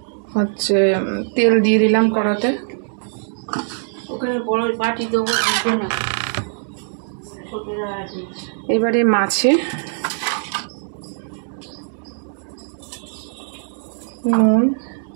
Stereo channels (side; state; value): left; silent; digital silence